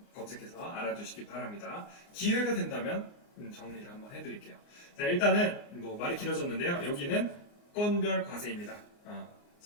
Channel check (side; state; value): right; late; 29 ms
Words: 검색해서 알아두시기 바랍니다. 기회가 된다면 정리를 한번 해드릴게요. 자, 일단은 말이 길어졌는데요. 여기는 건별 과세입니다.